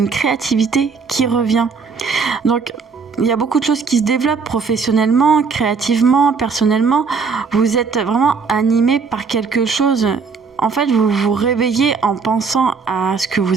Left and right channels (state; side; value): quieter; left; 5.2 dB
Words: créativité qui revient. Donc, il y a beaucoup de choses qui se développent professionnellement, créativement, personnellement. Vous êtes vraiment animé par quelque chose. En fait, vous vous réveillez en pensant à ce que